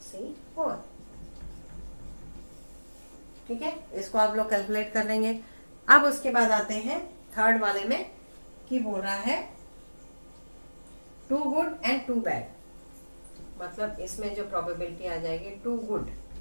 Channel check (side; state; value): both; inverted; correlation -1.00